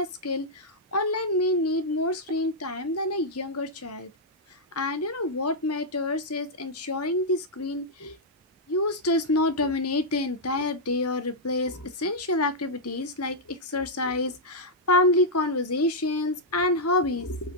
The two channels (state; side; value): normal; both; correlation -0.05